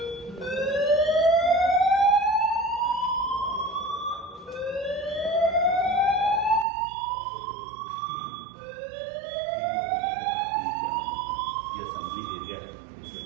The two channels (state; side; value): drops out; left; at 6.7 s